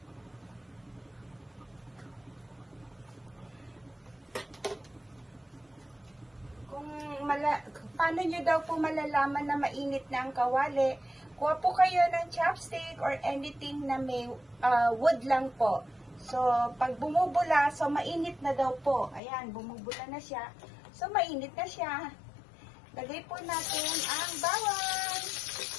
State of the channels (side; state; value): right; drops out; at 19.2 s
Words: Paano nyo daw po malalaman na mainit na ang kawali? Kuha po kayo ng chopstick or anything na may wood lang po. So, pag bumubula, so mainit na daw po. Ayan, bumubula na siya. So, mainit na siya. Lagay po natin ang bawang.